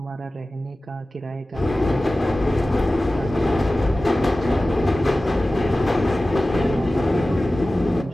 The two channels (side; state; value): both; normal; correlation 0.96